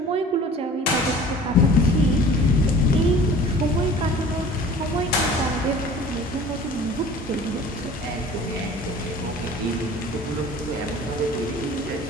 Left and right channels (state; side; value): normal; both; correlation 0.45